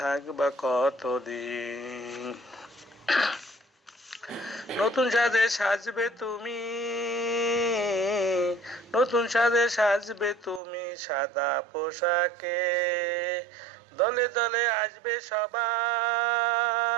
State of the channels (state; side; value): drops out; left; at 10.6 s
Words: থাকবা কতদিন? নতুন সাজে সাজবে তুমি, নতুন সাজে সাজবে তুমি সাদা পোশাকে। দলে দলে আসবে সবাই,